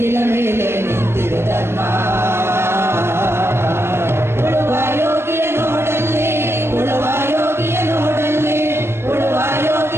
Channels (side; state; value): left; late; 0.12 ms